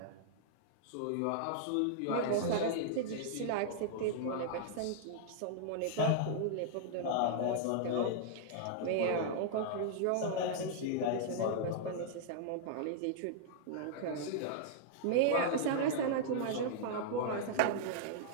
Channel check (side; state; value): both; different; correlation -0.01